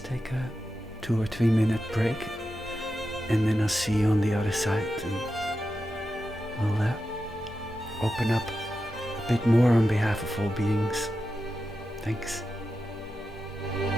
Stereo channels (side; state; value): both; normal; correlation 0.90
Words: take a 2 or 3 minute break, and then I'll see you on the other side, and we'll open up a bit more on behalf of all beings. Thanks.